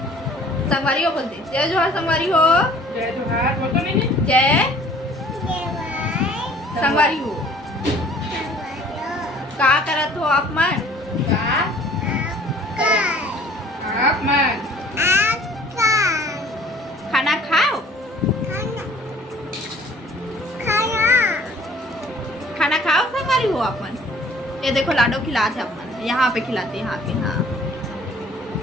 संगवारी हो बोलते जय जोहार। संगवारी हो जय जोहार बोल तो नहीं। जय संगवारी हो। का करत हो आप मन? आप मन खाना खाओ। खाना खाओ संगवारी हो आप मन। ये देखो लाडो खिलाते अपन, यहाँ पे खिलाते, यहाँ पे। हाँ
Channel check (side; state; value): both; normal; correlation 0.53